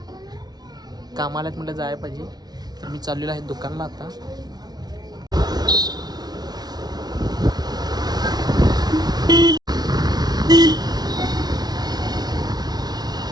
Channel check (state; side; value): late; left; 0.19 ms